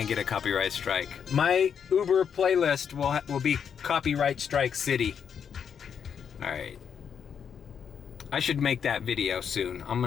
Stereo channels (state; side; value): quieter; right; 7.5 dB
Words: a copyright strike. My Uber playlist will be copyright strike city. All right. I should make that video soon. I'm